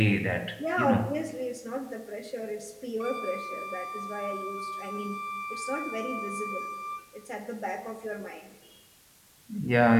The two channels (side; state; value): both; identical; correlation 1.00